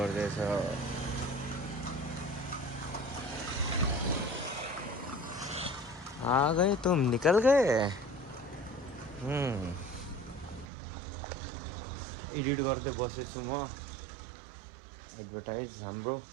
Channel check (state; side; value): drops out; left; at 10.7 s